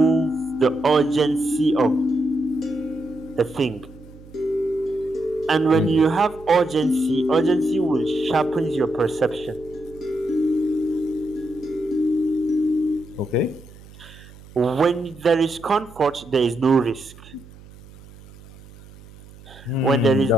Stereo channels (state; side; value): noise; right; hum, 21 dB below the sound